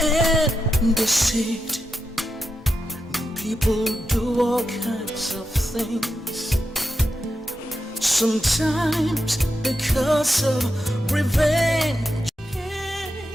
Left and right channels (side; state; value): both; normal; correlation 0.88